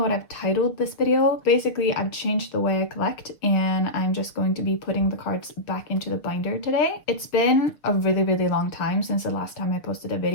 what I've titled this video. Basically, I've changed the way I collect and I'm just going to be putting the cards back into the binder today. It's been a really long time since the last time I posted a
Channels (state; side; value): late; right; 6.8 ms